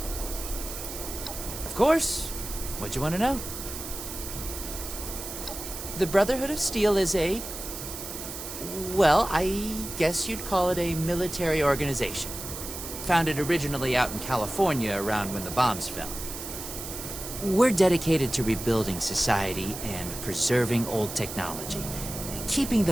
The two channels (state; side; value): noise; right; hiss, 9 dB below the sound